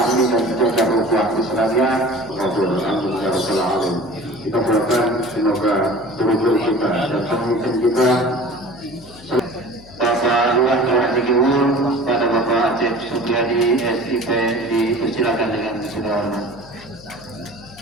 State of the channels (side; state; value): left; noise; hum, 21 dB below the sound